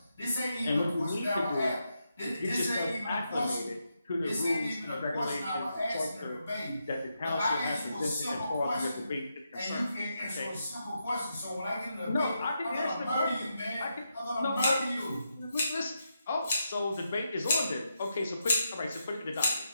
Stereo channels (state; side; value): inverted; both; correlation -0.84